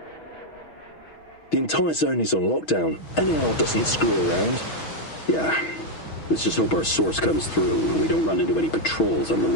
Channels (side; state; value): right; late; 6.2 ms